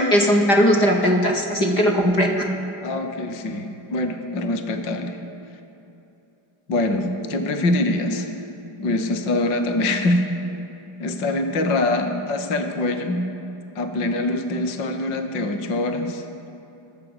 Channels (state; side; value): late; right; 5.0 ms